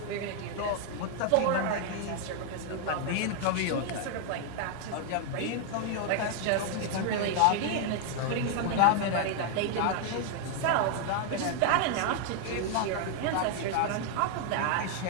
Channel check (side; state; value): both; different; correlation 0.00